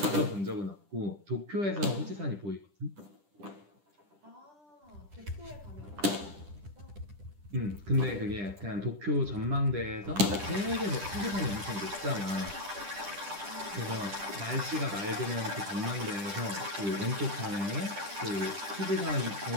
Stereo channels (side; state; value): left; late; 10 ms